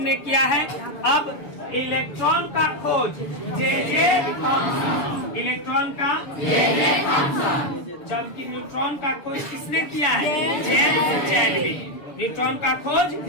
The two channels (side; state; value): right; late; 7.0 ms